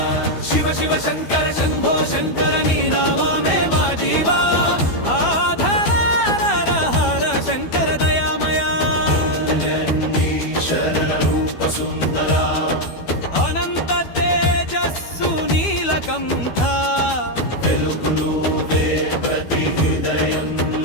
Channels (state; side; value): late; right; 12 ms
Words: शिव शिव शंकर शंभो शंकर नी नाम में मा जीवा आधार शंकर दयामया रूप सुंदरा अनंत तेजस्सु नीलकंठ వెలుగును వే ప్రతి